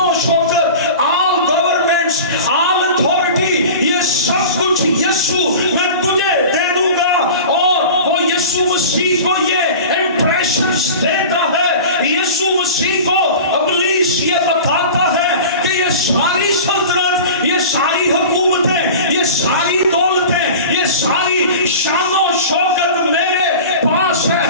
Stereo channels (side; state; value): both; inverted; correlation -0.36